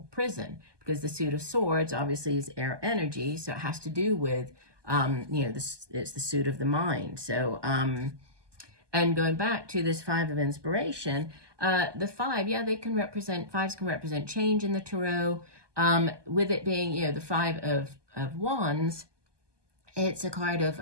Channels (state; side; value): late; left; 1.2 ms